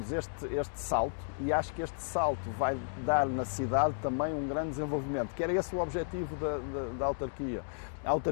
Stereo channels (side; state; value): right; silent; digital silence